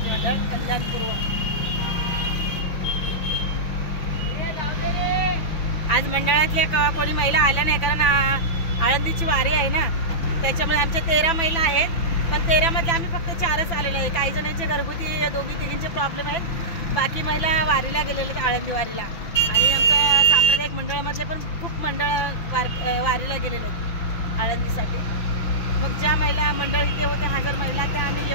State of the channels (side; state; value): right; late; 6.0 ms